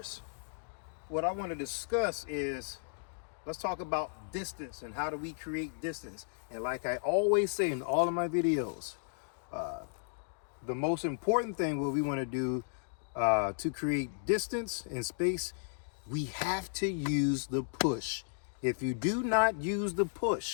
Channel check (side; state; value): right; silent; digital silence